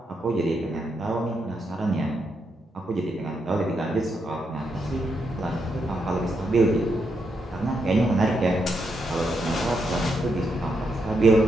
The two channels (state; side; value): normal; both; correlation 0.81